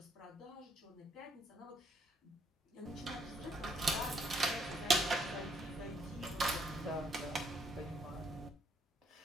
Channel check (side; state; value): both; normal; correlation 0.71